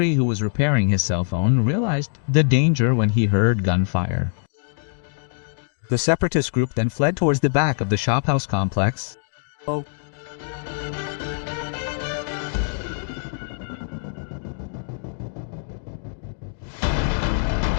who was repairing his cell phone, realized the danger when he heard gunfire. The separatist group then fled towards the back of the shophouse complex.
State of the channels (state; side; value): silent; right; digital silence